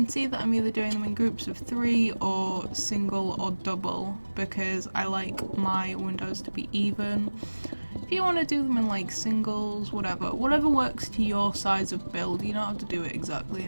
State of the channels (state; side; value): inverted; both; correlation -1.00